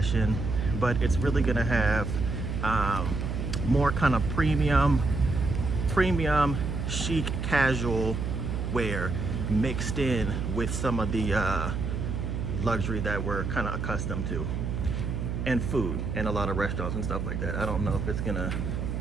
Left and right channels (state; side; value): noise; right; hum, 3 dB below the sound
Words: but it's really gonna have more kind of premium chic casual wear mixed in with some of the luxury that we're kind of accustomed to, and food and a lot of restaurants and stuff like that. I don't know if it's gonna,